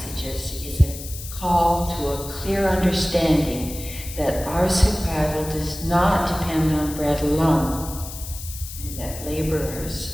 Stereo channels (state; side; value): noise; left; hiss, 11 dB below the sound